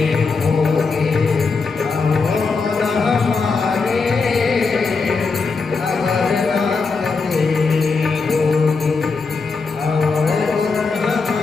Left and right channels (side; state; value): right; quieter; 4.5 dB